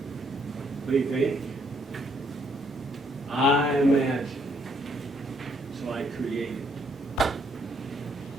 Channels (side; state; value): both; normal; correlation 0.70